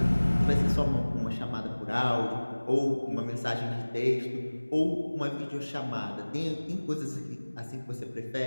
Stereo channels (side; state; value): both; inverted; correlation -1.00